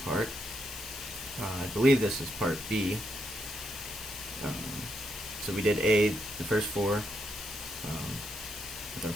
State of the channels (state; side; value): noise; right; hiss, 15 dB below the sound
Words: part. I believe this is part B. So we did A, the first four, with our